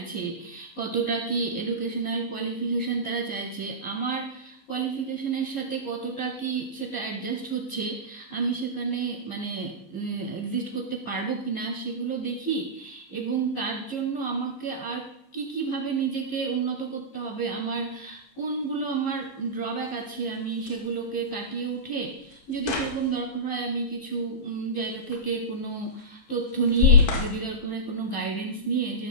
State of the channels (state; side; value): late; right; 15 ms